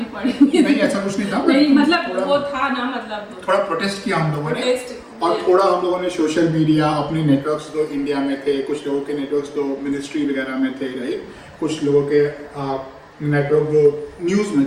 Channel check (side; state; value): both; identical; correlation 1.00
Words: पड़े। नहीं ऐसा कुछ नहीं था, नहीं मतलब वो था ना, मतलब थोड़ा प्रोटेस्ट किया हम लोगों ने, और थोड़ा हम लोगों ने सोशल मीडिया, अपने नेटवर्क्स जो इंडिया में थे, कुछ लोगों के नेटवर्क्स जो मिनिस्ट्री वगैरह में थे, राइट, कुछ लोगों के नेटवर्क जो न्यूज़ में